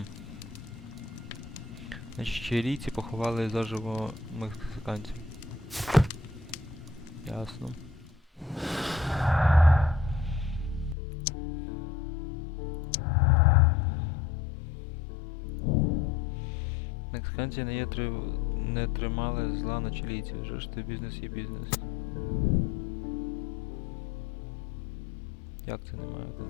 Значить, чилійці поховали заживо мексиканців. Ясно. Мексиканці не тримали зла на чилійців, вже ж то бізнес є бізнес. Як це немає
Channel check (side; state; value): right; drops out; at 11.0 s